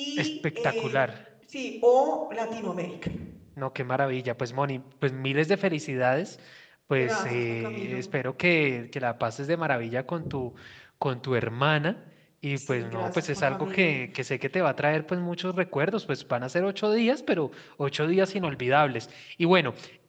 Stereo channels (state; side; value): identical; both; correlation 1.00